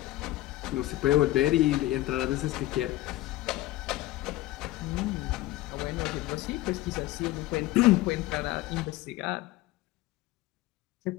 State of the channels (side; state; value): right; quieter; 16.8 dB